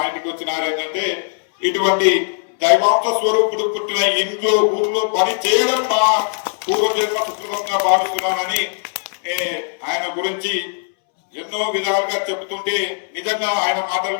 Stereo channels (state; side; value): silent; right; 66 dB below the other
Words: ఇంటికి వచ్చినారు ఏంటంటే, ఇటువంటి దైవాంశ స్వరూపుడు పుట్టిన ఇంట్లో ఊర్లో పని చేయడం నా పూర్వజన్మ సుకృతంగా భావిస్తున్నానని ఆయన గురించి ఎన్నో విధాలుగా చెబుతుంటే నిజంగా ఆయన